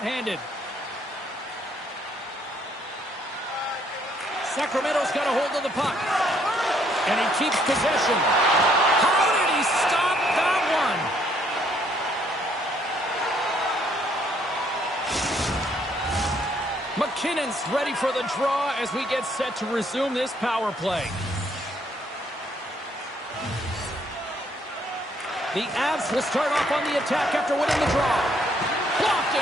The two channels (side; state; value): both; normal; correlation 0.67